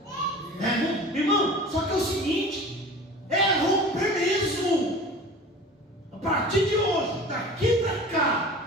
Irmão, só que é o seguinte, é romper mesmo. A partir de hoje, daqui para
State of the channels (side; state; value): both; normal; correlation 0.39